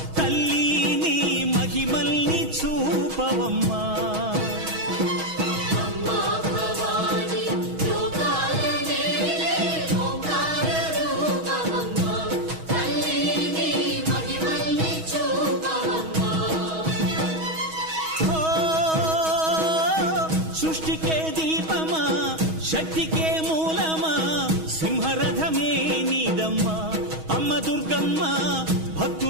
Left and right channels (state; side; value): late; left; 6.3 ms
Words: తల్లి నీ మహిమల్ని చూపవమ్మా సృష్టికే దీపమా శక్తికే మూలమా సింహరథమే నీదమ్మా అమ్మ దుర్గమ్మ